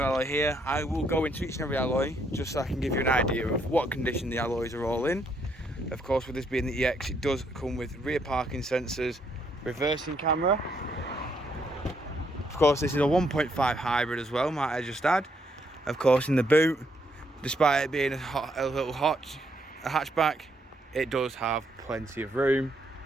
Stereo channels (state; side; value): normal; both; correlation 0.73